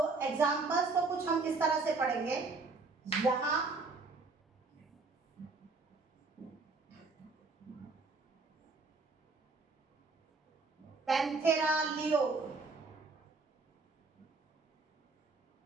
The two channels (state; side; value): quieter; left; 3.9 dB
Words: एग्जांपल्स को कुछ हम इस तरह से पढ़ेंगे। यहाँ Panthera leo,